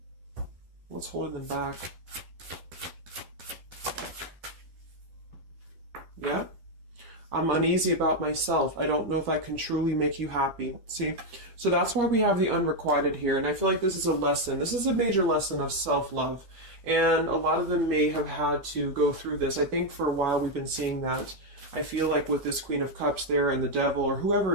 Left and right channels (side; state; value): left; late; 12 ms